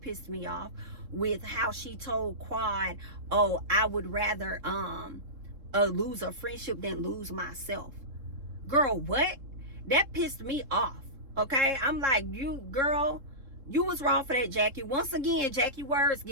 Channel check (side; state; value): left; late; 3.7 ms